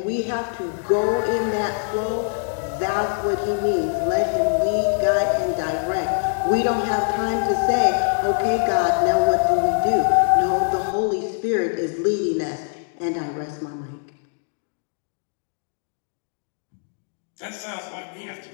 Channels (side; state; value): right; silent; digital silence